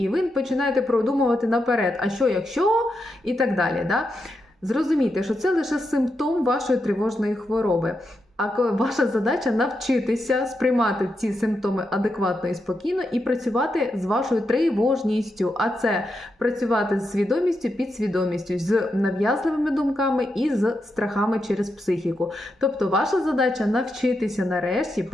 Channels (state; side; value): normal; both; correlation 0.85